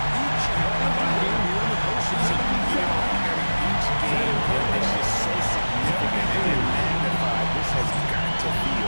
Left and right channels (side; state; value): both; inverted; correlation -1.00